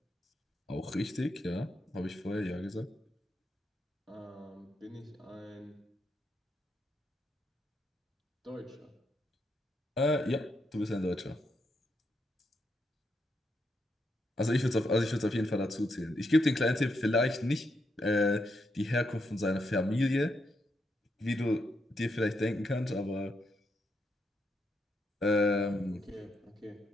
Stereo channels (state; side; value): normal; both; correlation 0.81